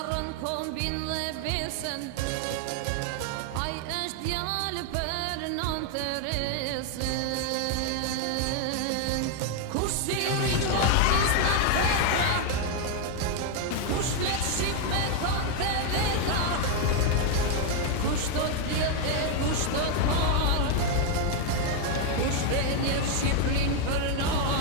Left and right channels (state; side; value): different; both; correlation 0.01